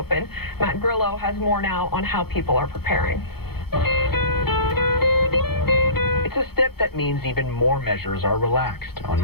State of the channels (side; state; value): right; late; 0.96 ms